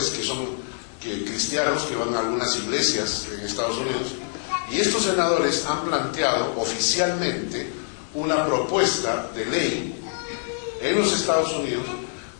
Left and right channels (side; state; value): right; silent; digital silence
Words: que son cristianos que van a algunas iglesias en Estados Unidos, y estos senadores han planteado oficialmente una propuesta de ley en los Estados Unidos